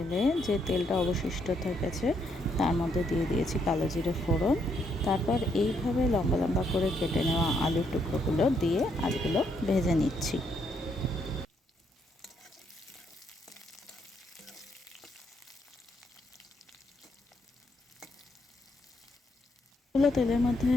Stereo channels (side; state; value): both; normal; correlation 0.74